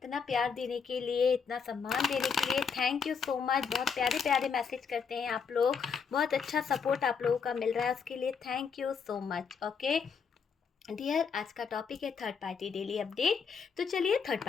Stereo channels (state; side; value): quieter; right; 6.0 dB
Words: प्यार देने के लिए, इतना सम्मान देने के लिए थैंक यू सो मच। बहुत प्यारे प्यारे मैसेज करते हैं आप लोग, बहुत अच्छा सपोर्ट आप लोगों का मिल रहा है, उसके लिए thank you so much. Okay dear, आज का टॉपिक है थर्ड पार्टी डेली अपडेट। तो चलिए थर्ड